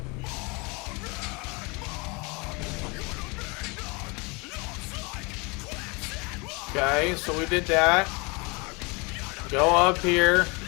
Okay, so we did that. Go up here.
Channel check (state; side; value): quieter; right; 28.5 dB